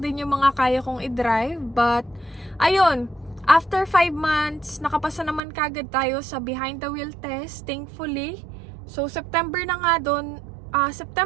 din yung mga kaya kong i-drive. But, ayun. After 5 months, nakapasa naman kagad tayo sa behind the wheel test, thankfully. So, September na nga noon,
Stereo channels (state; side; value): drops out; left; at 5.4 s